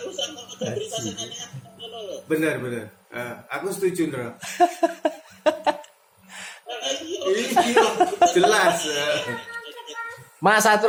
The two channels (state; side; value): identical; both; correlation 1.00